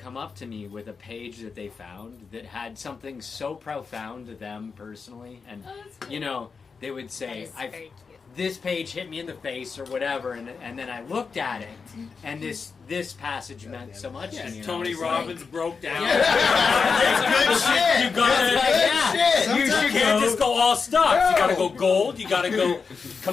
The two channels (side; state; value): right; quieter; 5.2 dB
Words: up to me with a page that they found that had something so profound to them personally, and you know, they would say, this page hit me in the face or whatever, and then I looked at it, and this passage meant so much to me. Tony Robbins broke down. That's good shit. You gotta, That's good shit. you can't just go all stocks. You gotta go gold. You gotta go